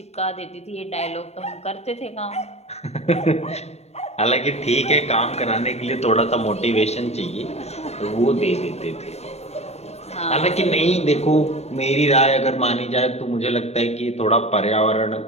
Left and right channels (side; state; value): right; late; 0.31 ms